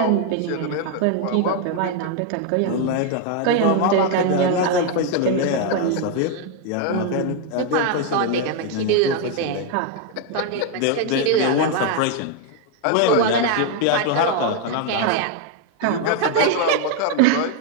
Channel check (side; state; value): both; different; correlation 0.01